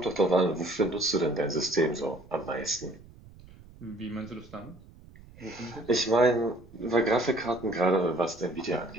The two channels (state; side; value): noise; right; rumble, 21 dB below the sound